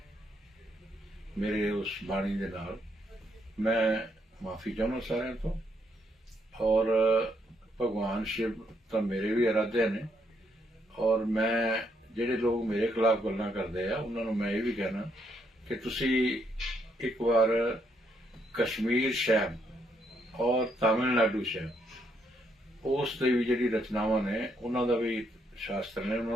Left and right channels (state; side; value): normal; both; correlation 0.74